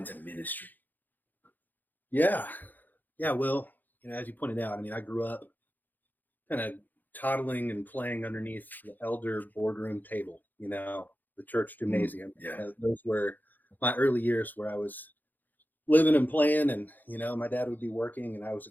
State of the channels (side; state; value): right; late; 0.085 ms